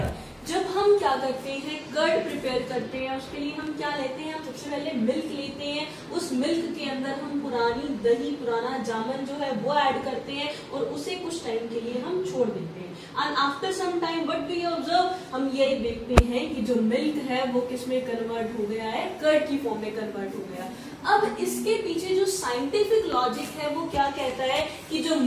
जब हम क्या करते हैं, curd prepare करते हैं, उसके लिए हम क्या लेते हैं, हम सबसे पहले मिल्क लेते हैं। उस मिल्क के अंदर हम पुरानी दही, पुराना जामन जो है वो ऐड करते हैं और उसे कुछ टाइम के लिए हम छोड़ देते हैं। And after some time what we observe, हम ये देखते हैं कि जो मिल्क है वो किस में कन्वर्ट हो गया है, कर्ड की फॉर्म में कन्वर्ट हो गया। अब इसके पीछे जो साइंटिफिक लॉजिक है वो क्या कहता है कि जो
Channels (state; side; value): identical; both; correlation 1.00